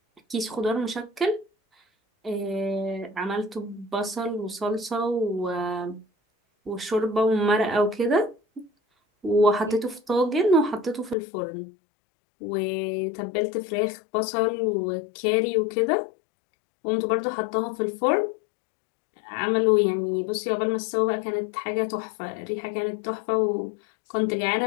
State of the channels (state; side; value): drops out; right; at 11.2 s